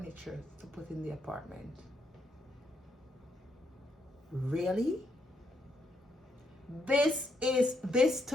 to put in the apartment. Really? This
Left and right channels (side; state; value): both; normal; correlation 0.78